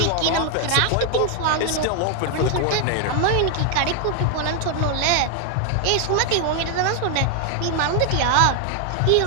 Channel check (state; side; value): different; both; correlation 0.00